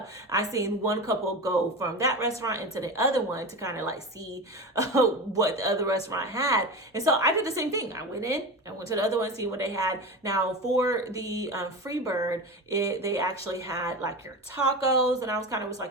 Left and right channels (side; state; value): both; normal; correlation 0.26